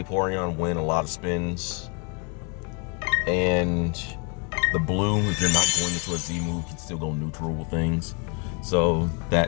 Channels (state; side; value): quieter; right; 35.9 dB